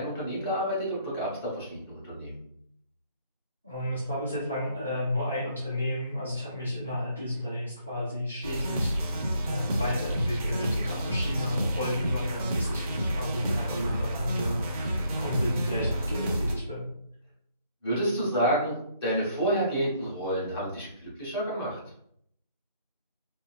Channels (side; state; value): both; inverted; correlation -0.69